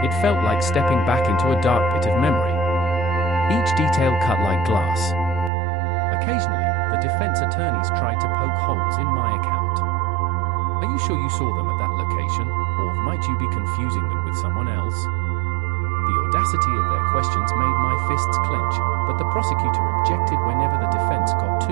It felt like stepping back into a dark pit of memory. Each detail cut like glass. Occasionally, the defense attorneys tried to poke holes in my account. Are you sure you saw them at that location, or might you be confusing them with someone else? The audacity of their questions made my fists clench, but the prosecutor objected whenever the defense got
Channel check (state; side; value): drops out; left; at 5.5 s